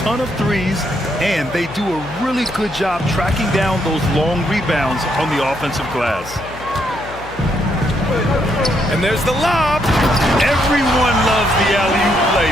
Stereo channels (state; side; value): noise; left; hum, 16 dB below the sound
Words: of threes, and they do a really good job tracking down those long rebounds on the offensive glass. And there's the lob. Everyone loves the alley-oop play,